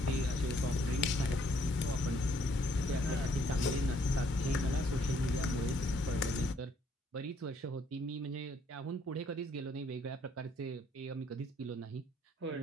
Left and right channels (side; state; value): both; normal; correlation 0.67